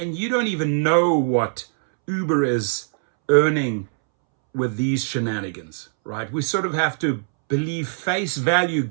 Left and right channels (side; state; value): left; silent; 64 dB below the other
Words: you don't even know what Uber is earning with these shenanigans, right? We sort of have to believe face value,